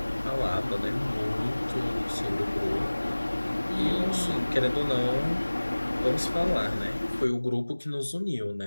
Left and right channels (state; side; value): inverted; both; correlation -1.00